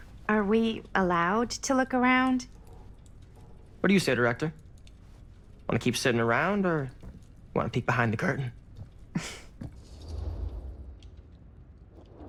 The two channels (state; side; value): identical; both; correlation 1.00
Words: Are we allowed to look around? What do you say, director? Want to keep sitting around, or want to peek behind the curtain?